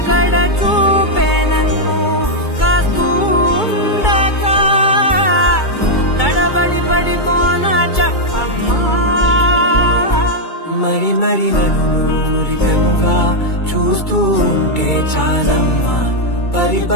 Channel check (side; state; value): right; late; 2.3 ms